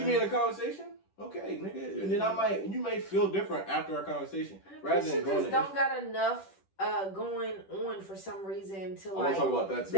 me in a conversation, okay, nigga, and then you may feel different after our conversation, rather than going. Just don't got enough going on for some reason to I want like. to talk about that too.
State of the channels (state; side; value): late; right; 10 ms